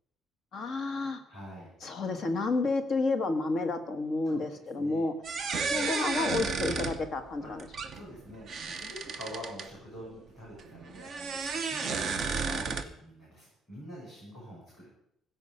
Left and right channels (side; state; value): both; normal; correlation 0.74